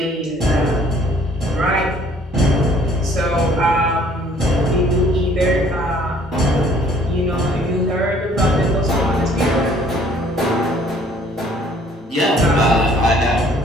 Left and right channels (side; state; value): both; normal; correlation 0.58